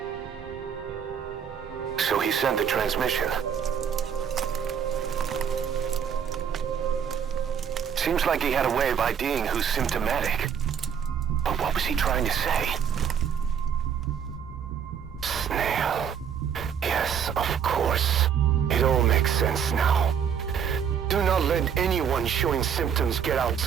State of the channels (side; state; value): left; quieter; 7.8 dB